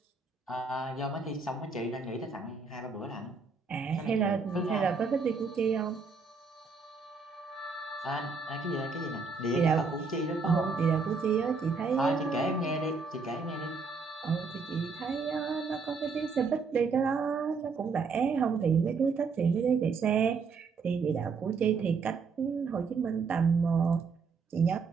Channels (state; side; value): quieter; left; 4.7 dB